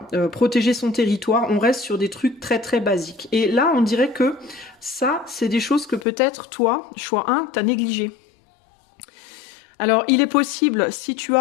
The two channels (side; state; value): right; drops out; at 6.1 s